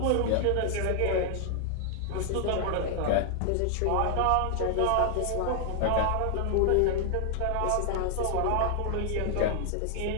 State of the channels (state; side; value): different; both; correlation 0.00